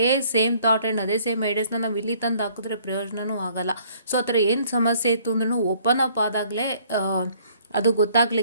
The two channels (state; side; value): inverted; both; correlation -0.60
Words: ಸೇಮ್ ಥಾಟ್ ಆ್ಯಂಡ್ ಅದೇ ಸೇಮ್ ಐಡಿಯಾಸ್ನ ನಾವು ಇಲ್ಲಿ ತಂದು ಹಾಕಿದ್ರೆ ಪ್ರಯೋಜನವೂ ಆಗೋಲ್ಲ. ಸೊ ಆ ಥರ ಏನು ಸಮಸ್ಯೆ ಇತ್ತು ಅಂದ್ರೂ ಓಪನ್ ಅಪ್ ಆದಾಗಲೇ ಅದು